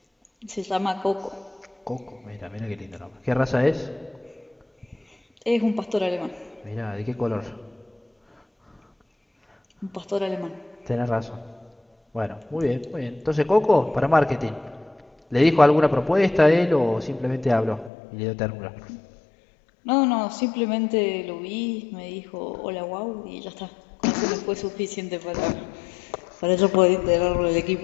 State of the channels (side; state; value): right; drops out; at 17.9 s